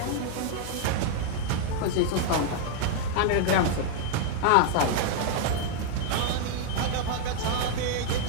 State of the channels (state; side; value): different; both; correlation 0.00